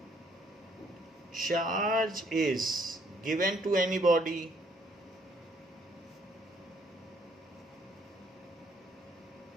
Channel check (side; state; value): both; normal; correlation 0.66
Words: charge is given to any body